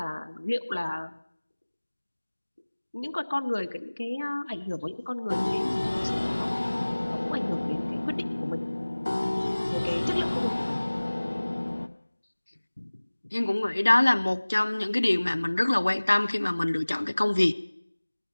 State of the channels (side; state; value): both; inverted; correlation -1.00